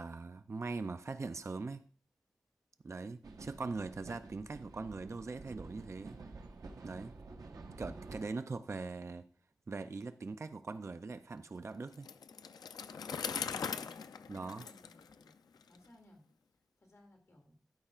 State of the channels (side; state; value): both; normal; correlation 0.76